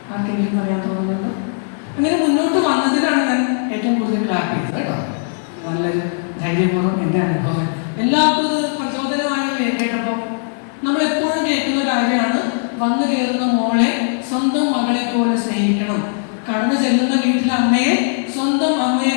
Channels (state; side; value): silent; right; 67 dB below the other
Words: ആർക്കെങ്കിലും പറയാൻ തോന്നുന്നുണ്ടോ? അങ്ങനെ മുന്നോട്ട് വന്നതിനാണ് ഞാൻ ഏറ്റവും കൂടുതൽ ക്ലാപ്പ് ചെയ്തത് കേട്ടോ. നല്ലൊരു ധൈര്യപൂർവ്വം എൻ്റെ അനുഭവം എല്ലാവർക്കും പ്രചോദനമായി കേട്ടപ്പോൾ നമ്മളെപ്പോഴും കേൾക്കുന്ന കാര്യമാണ്, വന്നു കയറുന്ന മോളെ സ്വന്തം മകളെ പോലെ സ്നേഹിക്കണം, കടന്നു ചെല്ലുന്ന വീട്ടിലെ അമ്മയെ സ്വന്തം അമ്മയെ